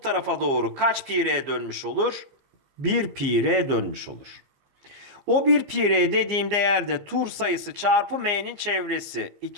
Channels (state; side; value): late; left; 15 ms